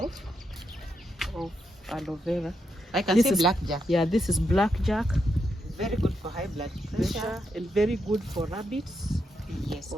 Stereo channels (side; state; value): both; normal; correlation 0.82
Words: aloe vera. I can see blackjack. Yeah, this is blackjack. Very good for high blood pressure and very good for rabbits. Yes.